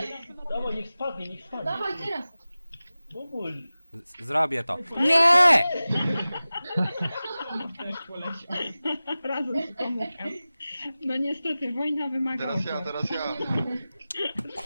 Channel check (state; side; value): inverted; both; correlation -0.96